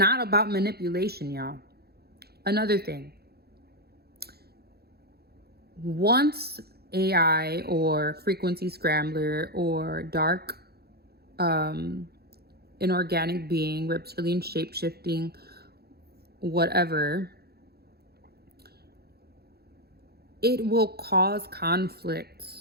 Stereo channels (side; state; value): left; late; 0.46 ms